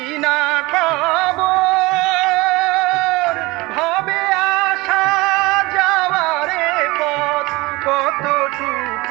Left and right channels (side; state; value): left; quieter; 22.4 dB